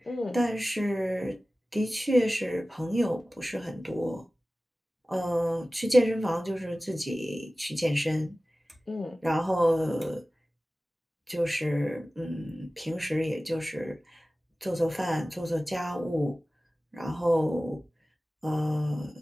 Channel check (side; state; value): both; normal; correlation 0.97